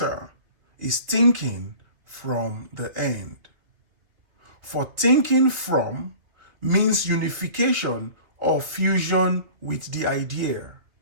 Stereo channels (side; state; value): left; late; 2.8 ms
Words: is thinking from the end. For thinking from means unification or fusion with the idea,